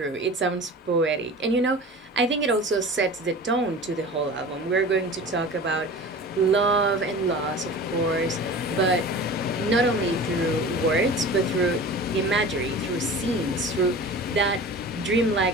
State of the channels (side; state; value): both; normal; correlation 0.37